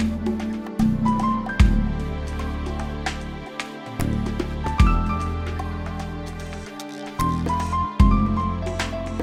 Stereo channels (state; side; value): identical; both; correlation 1.00